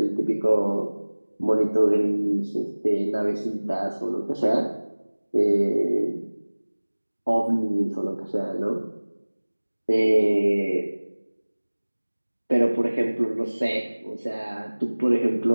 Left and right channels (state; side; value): inverted; both; correlation -1.00